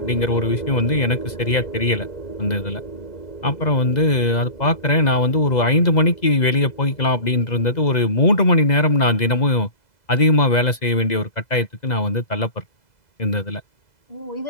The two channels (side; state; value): right; late; 2.0 ms